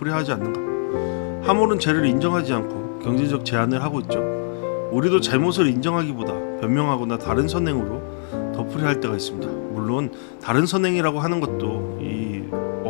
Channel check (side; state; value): right; silent; 64 dB below the other